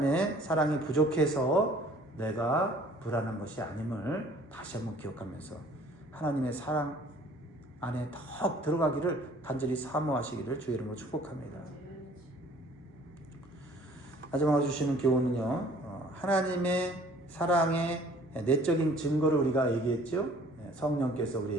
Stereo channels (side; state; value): both; normal; correlation 0.53